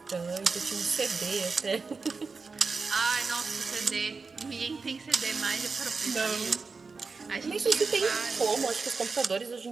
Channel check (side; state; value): left; quieter; 4.5 dB